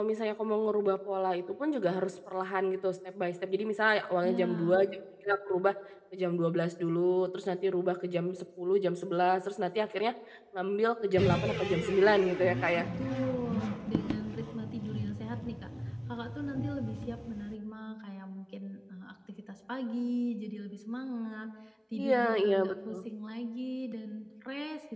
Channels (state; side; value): identical; both; correlation 1.00